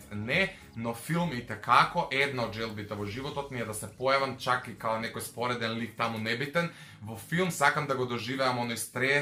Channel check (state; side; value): identical; both; correlation 1.00